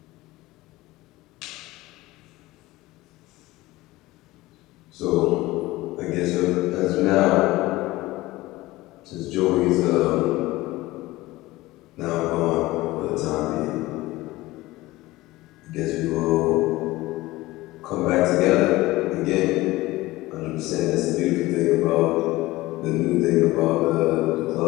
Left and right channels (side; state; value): right; quieter; 18.8 dB